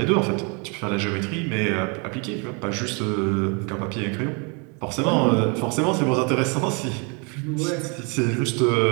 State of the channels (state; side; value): quieter; left; 33.6 dB